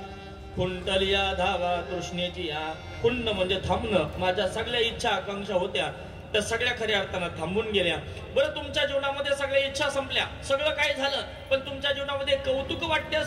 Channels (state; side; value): identical; both; correlation 1.00